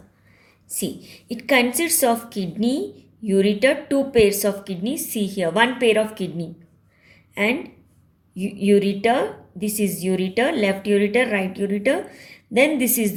See, it consists of kidney, ureter, two pairs of kidneys. See here, one pair of kidney, and ureter. This is ureter, left ureter, right ureter. Then this is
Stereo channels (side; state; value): both; identical; correlation 1.00